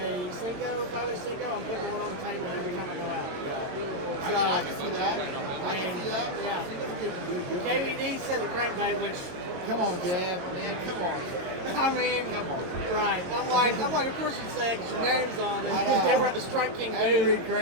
Cinco, 5-inch Cinco, I'm putting one on the table every time I go out. Yeah. So, I can see that. I can see that. Yeah. See, that's good. KVD said the crankbait, which. Come on, Kev, man. Come on, Kev. I mean, come on. Right. I'm like, of course you'd say it because your name's on it. I know. They were at the Strike King booth. Every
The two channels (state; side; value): late; left; 22 ms